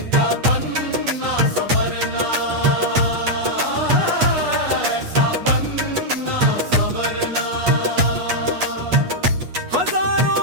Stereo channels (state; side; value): late; left; 8.3 ms